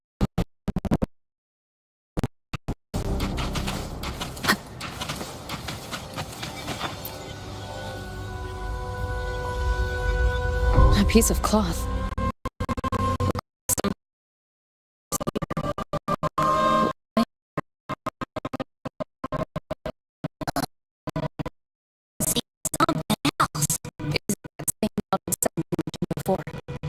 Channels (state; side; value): identical; both; correlation 1.00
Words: A piece of cloth.